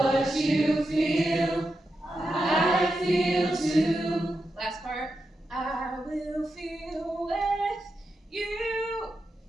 you feel, I feel too. Last part. I will feel with you.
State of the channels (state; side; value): normal; both; correlation 0.88